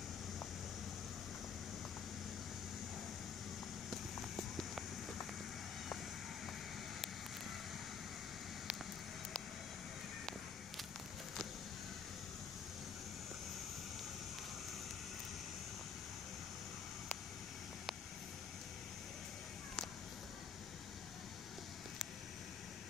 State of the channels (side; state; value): right; quieter; 6.3 dB